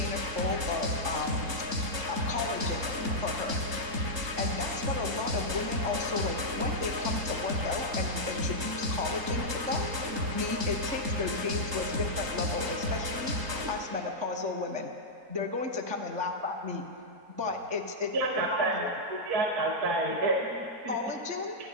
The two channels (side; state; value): left; late; 3.8 ms